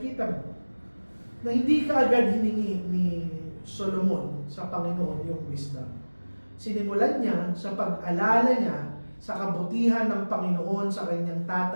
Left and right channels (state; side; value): inverted; both; correlation -1.00